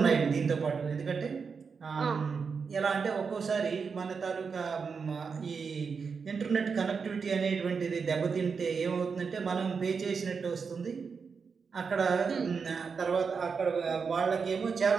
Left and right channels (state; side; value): quieter; left; 5.5 dB